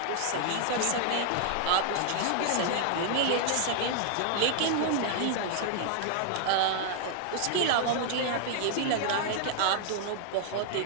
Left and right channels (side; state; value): both; different; correlation 0.00